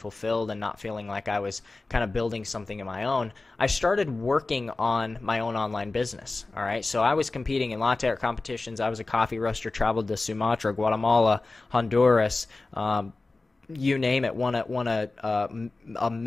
and not feeling like I was kind of building something of my own. I started working on my own online business. All right. So I was competing in latte art competitions. I was a coffee roaster, traveled to Sumatra, Guatemala, Honduras, you name it, won a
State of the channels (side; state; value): right; quieter; 3.4 dB